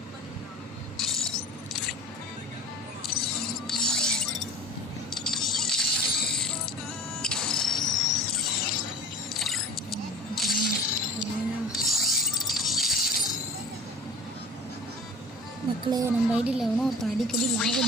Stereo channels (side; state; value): both; normal; correlation 0.41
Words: மக்களே, நம்ம ஐடியில் எவனோ ஒருத்தன் அடிக்கடி லாக்